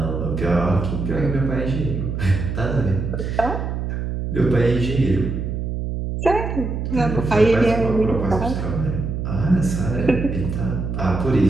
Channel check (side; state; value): right; noise; hum, 3 dB below the sound